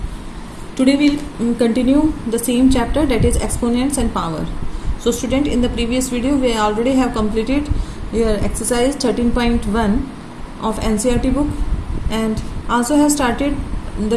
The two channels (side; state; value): both; identical; correlation 1.00